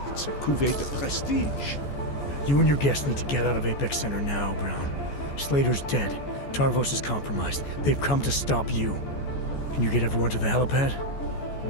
It's a cuvée de prestige. You and your guests need to get out of Apex Center now, Brown. Slater's dead. Tarvos is compromised. They've come to stop you. Can you get everyone to the helipad?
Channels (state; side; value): late; right; 14 ms